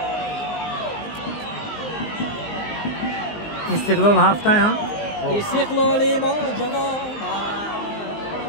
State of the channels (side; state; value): right; late; 19 ms